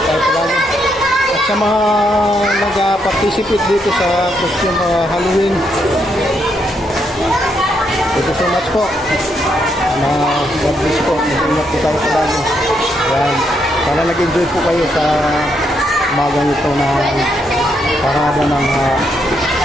tayo palagi. At sa mga nag-participate dito sa costume Halloween, thank you so much po. God bless po. Nag-iingat po tayo palagi. Yan. Sana nag-enjoy po kayo sa umagang ito na parada ng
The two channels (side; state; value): both; normal; correlation 0.77